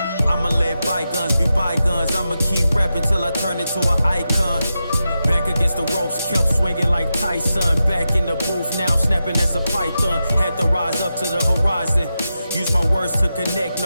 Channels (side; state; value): both; inverted; correlation -0.90